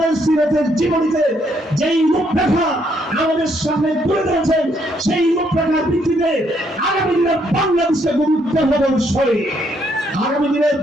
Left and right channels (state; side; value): normal; both; correlation 0.72